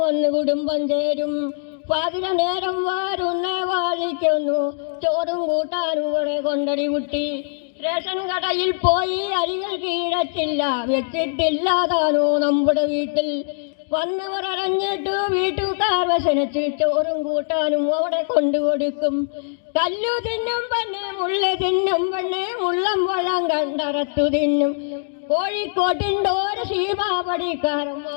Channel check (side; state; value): right; silent; digital silence